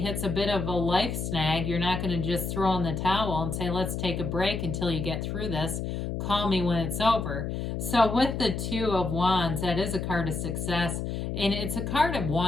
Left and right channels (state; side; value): noise; left; hum, 3 dB below the sound